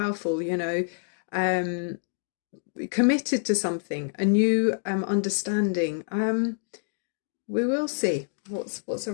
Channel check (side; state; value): right; silent; 60 dB below the other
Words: committed to something, a new understanding. We will see what's